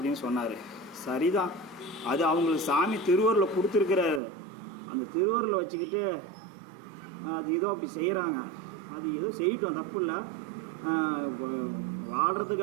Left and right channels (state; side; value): drops out; left; at 4.2 s